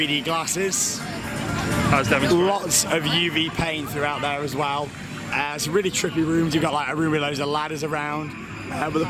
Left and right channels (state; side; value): identical; both; correlation 1.00